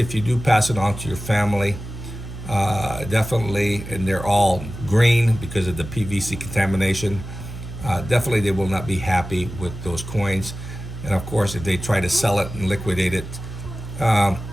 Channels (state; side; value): noise; right; hum, 11 dB below the sound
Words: you do pass it on to your family, definitely, and they're all green because of the PVC contamination, definitely they will not be happy with those coins. And of course, if they try to sell it and liquidate it to